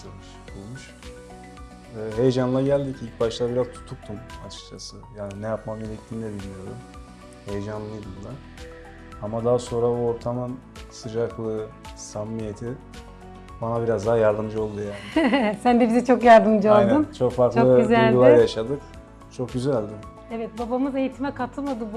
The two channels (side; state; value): both; identical; correlation 1.00